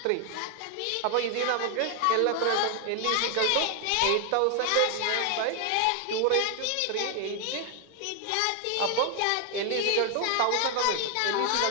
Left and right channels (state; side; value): different; both; correlation 0.00